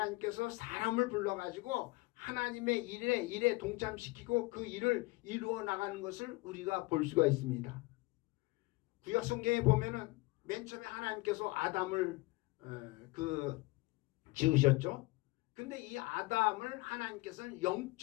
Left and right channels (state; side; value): quieter; right; 23.2 dB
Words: 사람을 불러가지고 하나님의 일에 동참시키고 그 일을 이루어 나가는 것을 우리가 볼 수가 있습니다. 구약 성경에 보면은 맨 처음에 하나님께서 아담을 지으셨죠. 근데 이 아담을 하나님께서는